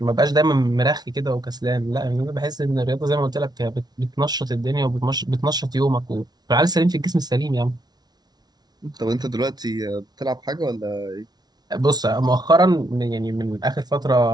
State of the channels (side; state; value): left; late; 0.19 ms